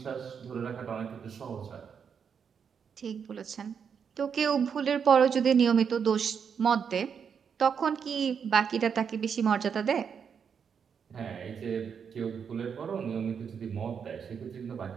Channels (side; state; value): left; quieter; 6.9 dB